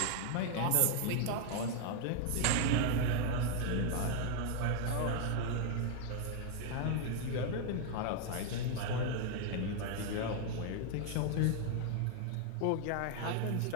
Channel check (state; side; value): different; both; correlation 0.00